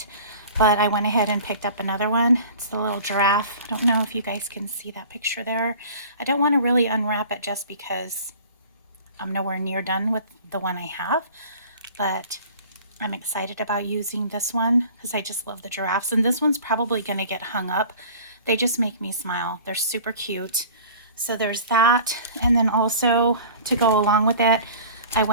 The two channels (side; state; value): both; inverted; correlation -0.44